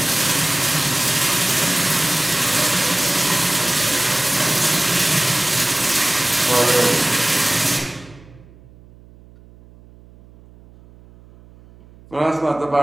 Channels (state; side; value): noise; right; hum, 24 dB below the sound